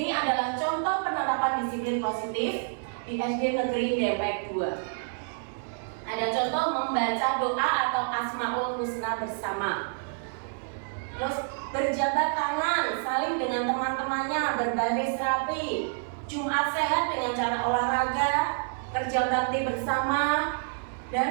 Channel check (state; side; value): silent; left; 59 dB below the other